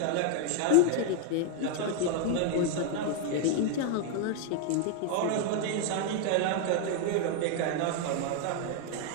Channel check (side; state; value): both; different; correlation 0.00